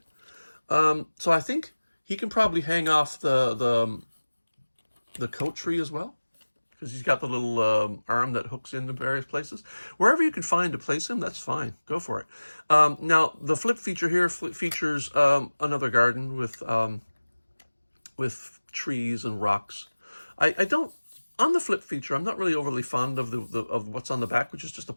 So I think he can probably hang off the coat tree as well, because he's got the little arm that hooks into various places. Wherever you can find to place him, that's fine. Go for it. Now, the flip feature here features another garden with trees and rocks. I don't, on the flip feature, I'm not really overly fond of of what's on the back, which is just a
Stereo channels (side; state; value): both; inverted; correlation -1.00